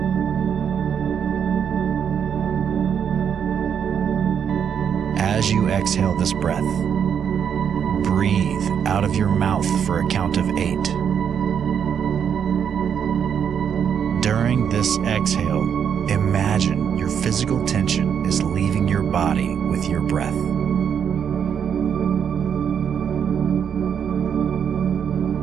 As you exhale this breath, breathe out of your mouth for a count of 8. During this exhale, imagine your physical tension is leaving your body with your breath.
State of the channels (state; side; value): quieter; left; 7.9 dB